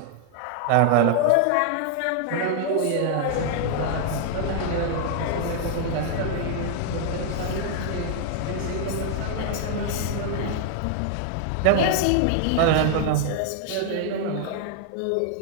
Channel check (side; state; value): both; different; correlation 0.00